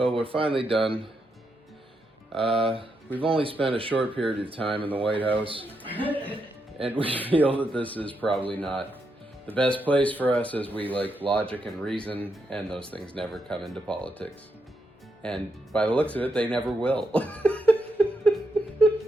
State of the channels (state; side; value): normal; both; correlation 0.82